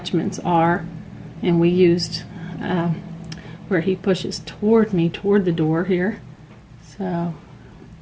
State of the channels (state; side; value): identical; both; correlation 1.00